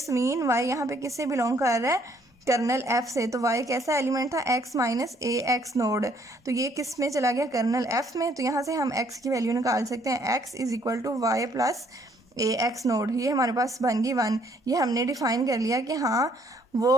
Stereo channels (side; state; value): both; normal; correlation 0.65